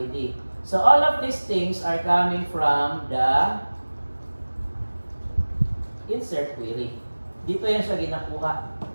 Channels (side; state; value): both; inverted; correlation -1.00